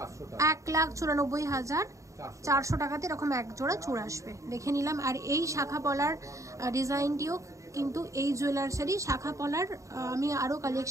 টাকা। 1,94,400 টাকাতে এরকম এক জোড়া চূড় আসবে, দেখে নিলাম। আর এই শাখা পলার ডিজাইনটিও কিন্তু এই জুয়েলার্সেরই শাখা পলার, আমি আরো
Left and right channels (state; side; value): late; left; 0.15 ms